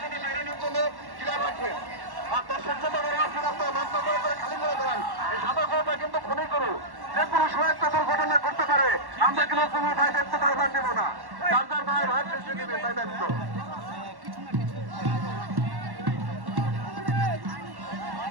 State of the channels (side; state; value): left; late; 1.1 ms